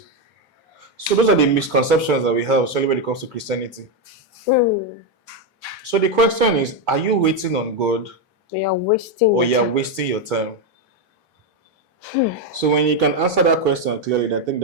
So those are the misconceptions that we have, especially when it comes to Christianity. So the question is, are you waiting on God? You're wasting wasting your time? So when you can answer that question clearly, I think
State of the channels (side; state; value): both; normal; correlation 0.06